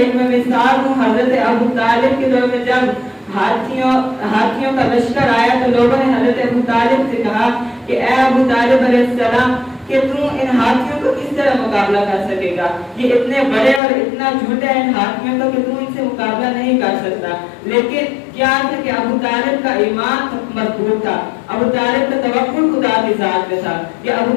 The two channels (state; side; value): drops out; right; at 13.8 s